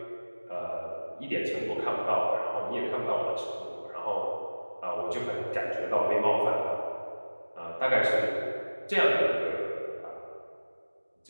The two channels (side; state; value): both; inverted; correlation -1.00